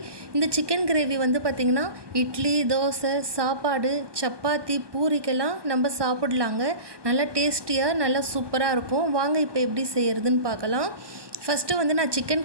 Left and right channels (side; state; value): left; late; 1.2 ms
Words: இந்த சிக்கன் கிரேவி பார்த்திங்கன்னா இட்லி, தோசை, சாப்பாடு, சப்பாத்தி, பூரிக்கெல்லாம் நம்ம சாப்பிடலாங்க. நல்லா டேஸ்டியாக நல்லா சூப்பராக இருக்கும். வாங்க இப்போ எப்படி செய்கிறதுன்னு பார்க்கலாம். ஃபஸ்ட்டு நான் சிக்கன்